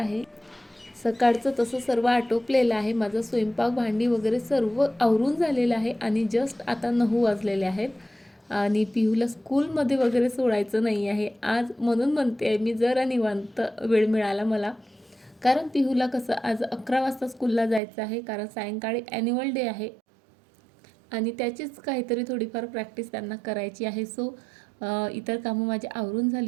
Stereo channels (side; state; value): left; drops out; at 17.8 s